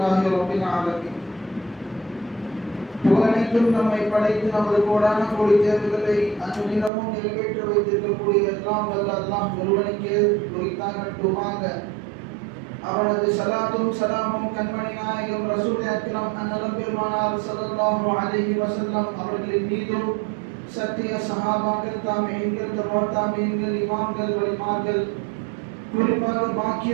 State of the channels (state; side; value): drops out; left; at 6.9 s